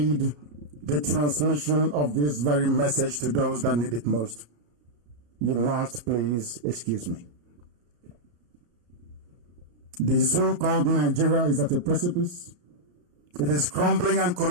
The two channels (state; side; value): late; left; 34 ms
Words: the transmission of this very message to those that need it most. You must please excuse me. The so-called Nigeria is at a precipice. It is crumbling and